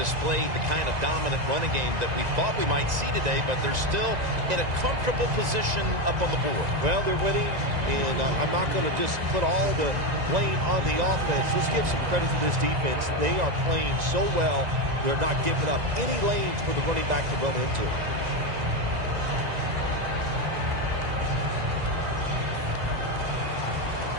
the kind of dominant running game that we thought we might see today, but they're still in a comfortable position up on the board. Well, they're winning, and I'm not going to just put all the blame on the offense. Let's give some credit to this defense. They are playing so well. They're not giving up any lanes for the running back to run into.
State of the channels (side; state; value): left; late; 1.9 ms